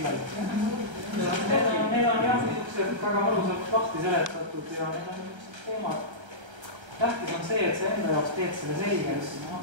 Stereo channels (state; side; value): late; left; 1.3 ms